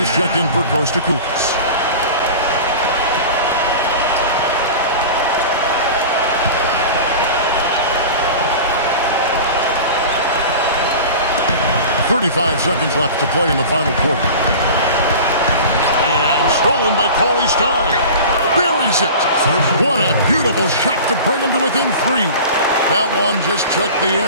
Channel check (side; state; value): both; inverted; correlation -0.35